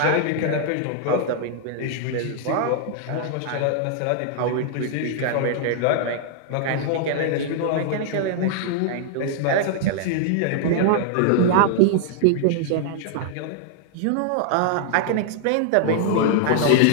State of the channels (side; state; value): both; different; correlation 0.00